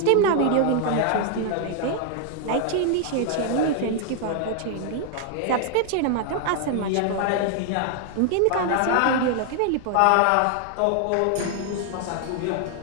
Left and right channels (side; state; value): both; different; correlation 0.00